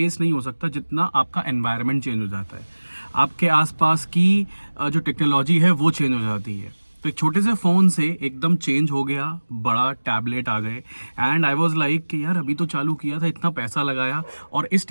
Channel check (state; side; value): inverted; both; correlation -1.00